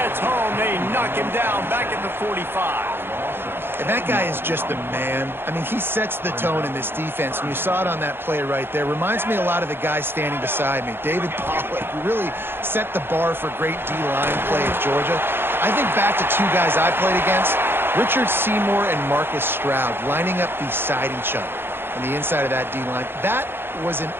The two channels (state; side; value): late; left; 0.11 ms